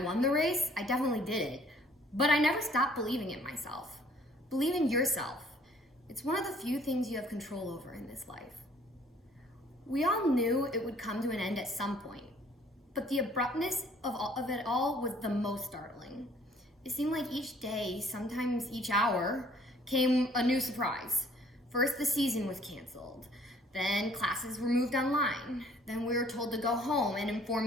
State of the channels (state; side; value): normal; both; correlation 0.58